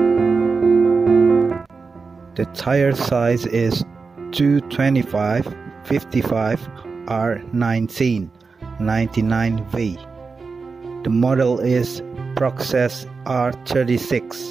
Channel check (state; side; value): quieter; left; 4.6 dB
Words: The tire size is 225/55 R19 99V. The model is Process